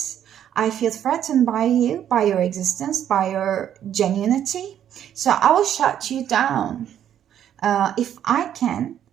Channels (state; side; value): quieter; left; 10.1 dB